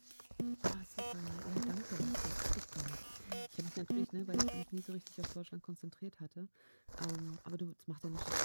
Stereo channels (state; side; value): inverted; both; correlation -1.00